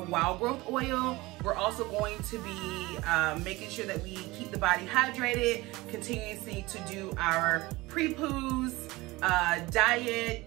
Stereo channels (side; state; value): left; quieter; 20.8 dB